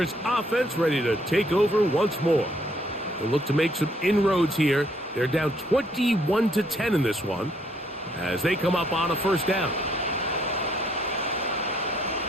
offense ready to take over once more. They'll look to make some inroads here. They're down 21-10 in this one as they come up on a 1st down.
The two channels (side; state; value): both; normal; correlation 0.68